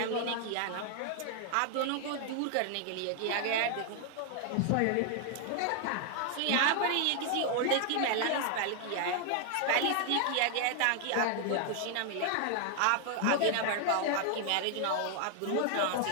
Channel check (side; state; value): both; different; correlation 0.00